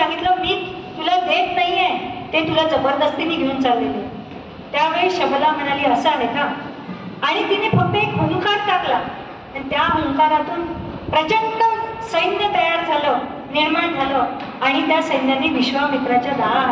मी तुला देत नाहीये, ते तुला जबरदस्तीने घेऊन चाललेले. त्यावेळी शबला म्हणाली, असं आहे का. आणि तिने फक्त एक हुंकार टाकला आणि त्या हुंकारातून प्रचंड सैन्य तयार झालं, निर्माण झालं आणि त्या सैन्याने विश्वामित्राच्या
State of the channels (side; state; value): both; identical; correlation 1.00